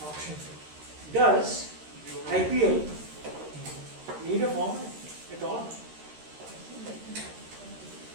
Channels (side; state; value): left; late; 13 ms